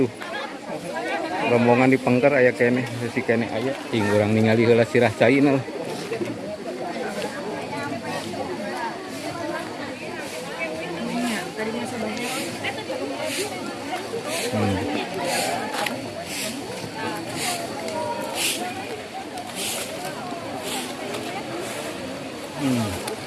Rombongan di Pengker aya kene, si kene aya. Ting urang ningali heula Sirascai na.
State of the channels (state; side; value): identical; both; correlation 1.00